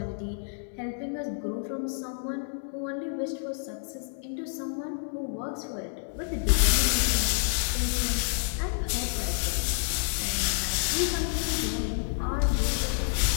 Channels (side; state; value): right; silent; digital silence